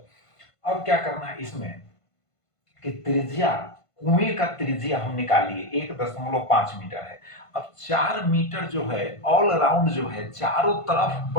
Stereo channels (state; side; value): late; right; 1.5 ms